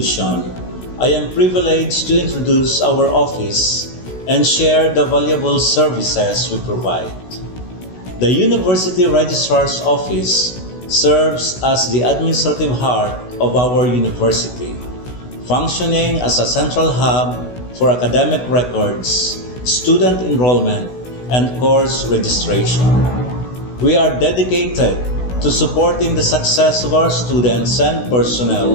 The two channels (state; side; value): late; right; 16 ms